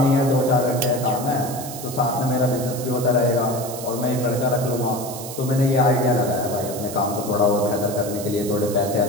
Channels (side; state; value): right; noise; hiss, 11 dB below the sound